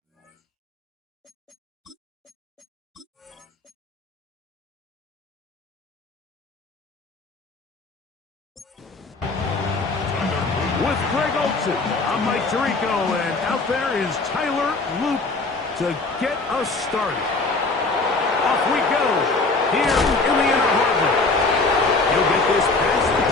With Greg Olson, I'm Mike Tirico, and out there is Tyler Loop to get us started. Off we go, here in the inner harbor. He'll get this past the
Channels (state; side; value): quieter; right; 3.6 dB